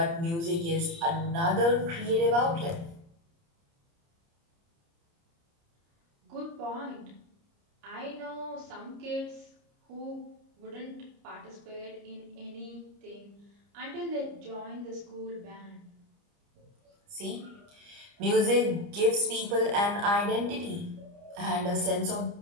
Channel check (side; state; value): left; late; 29 ms